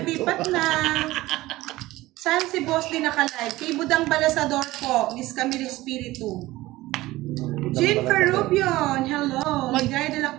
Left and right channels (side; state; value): left; quieter; 18.0 dB